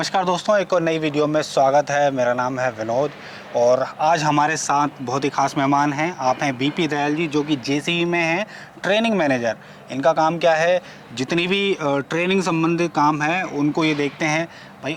दोस्तों, एक और नई वीडियो में स्वागत है। मेरा नाम है विनोद और आज हमारे साथ बहुत ही खास मेहमान हैं। आप हैं बीपी दयाल जी, जो कि जेसीबी में हैं ट्रेनिंग मैनेजर। इनका काम क्या है, जितनी भी ट्रेनिंग संबंधित काम है उनको ये देखते हैं भाई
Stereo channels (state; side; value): identical; both; correlation 1.00